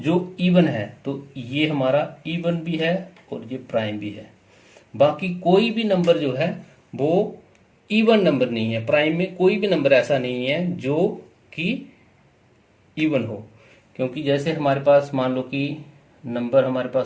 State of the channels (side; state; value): both; identical; correlation 1.00